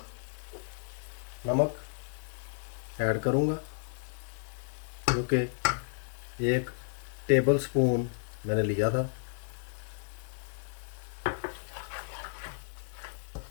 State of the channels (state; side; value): silent; right; 56 dB below the other